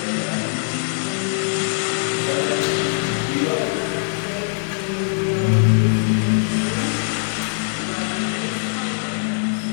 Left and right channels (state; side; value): silent; right; digital silence